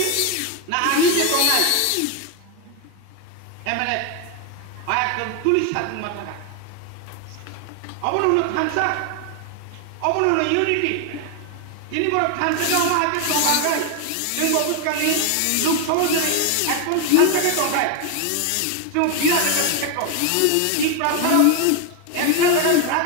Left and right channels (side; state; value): both; different; correlation 0.01